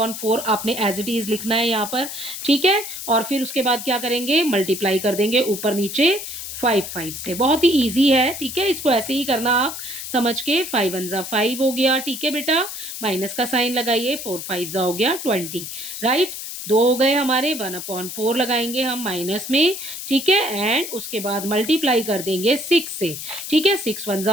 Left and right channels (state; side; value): noise; left; hiss, 8 dB below the sound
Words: आपने एज इट इज लिखना है यहाँ पर। ठीक है, और फिर उसके बाद क्या करेंगे, मल्टीप्लाई कर देंगे ऊपर नीचे 5 5 से। बहुत ही ईजी है। ठीक है, इसको ऐसे ही करना आप समझ के। 5 1 जा 5 हो गया। ठीक है बेटा, माइनस का साइन लगाइए, 4 5 जा हो गया 20, राइट। 2 हो गए हमारे, 1/4 लगाएंगे हम माइनस में। ठीक है, एंड उसके बाद मल्टीप्लाई कर देंगे 6 से। ठीक है, 6 1 जा